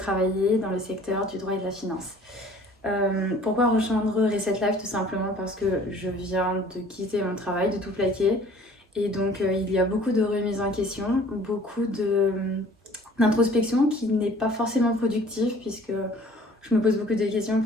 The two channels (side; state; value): both; normal; correlation 0.52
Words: dans le secteur du droit et de la finance. Pourquoi rejoindre Reset Life? Tout simplement parce que je viens de quitter mon travail, de tout plaquer. Et donc il y a beaucoup de remises en question, d'introspection qui n'est pas forcément productive puisque je me pose beaucoup de questions